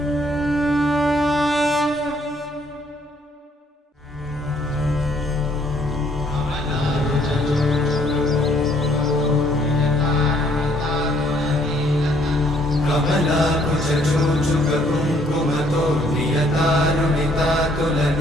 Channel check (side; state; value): both; normal; correlation 0.65